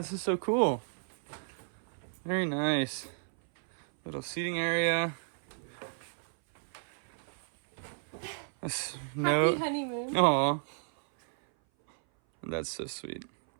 is so cool. Very nice. Little seating area. Happy honeymoon. Aw. That's so sweet.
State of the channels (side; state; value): left; silent; 56 dB below the other